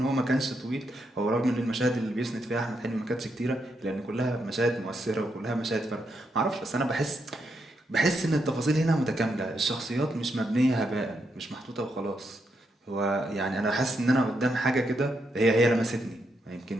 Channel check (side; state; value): both; normal; correlation 0.81